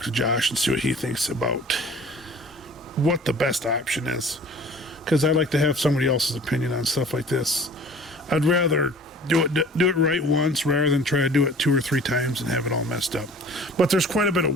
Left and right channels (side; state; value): both; normal; correlation 0.46